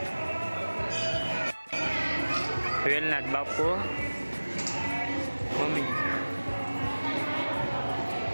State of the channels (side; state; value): both; inverted; correlation -1.00